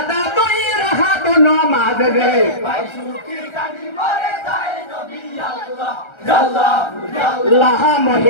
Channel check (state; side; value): late; right; 1.3 ms